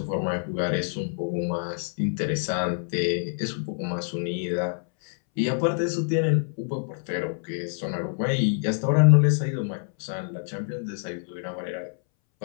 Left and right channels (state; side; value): silent; right; 61 dB below the other